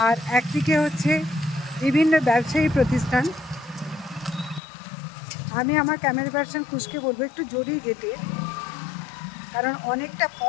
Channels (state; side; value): drops out; right; at 4.6 s